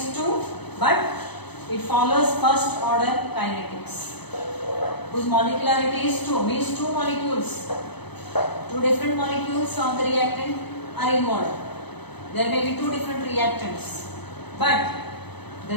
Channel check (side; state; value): right; late; 0.99 ms